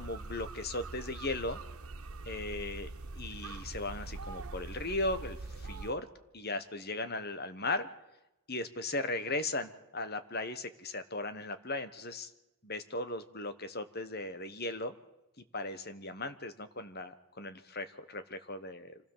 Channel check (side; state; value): both; normal; correlation -0.11